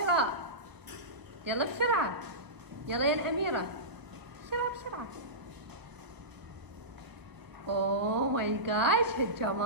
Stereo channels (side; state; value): left; late; 1.1 ms